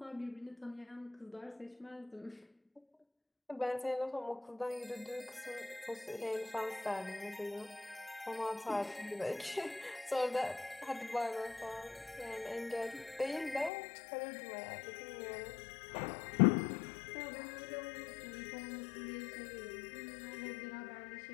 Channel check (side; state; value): right; drops out; at 13.7 s